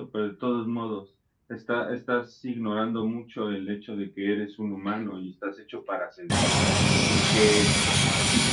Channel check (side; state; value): both; identical; correlation 1.00